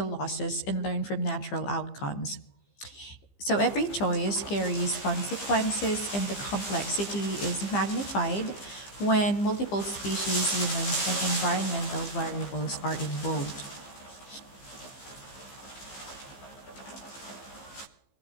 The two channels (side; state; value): right; late; 15 ms